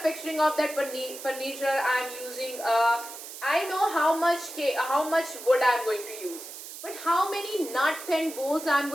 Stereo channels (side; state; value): right; noise; hiss, 12 dB below the sound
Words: of that furniture I am using I know how much wood I am going to use, but how many nut and bolts I am